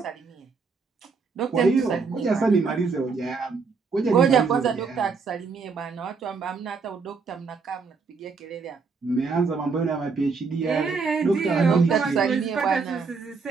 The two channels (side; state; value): left; quieter; 4.9 dB